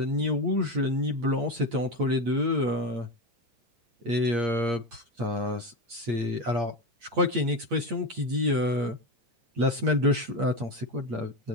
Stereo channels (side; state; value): left; late; 8.6 ms